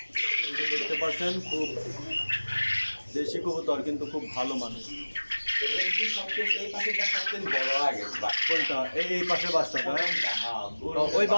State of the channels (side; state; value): both; inverted; correlation -1.00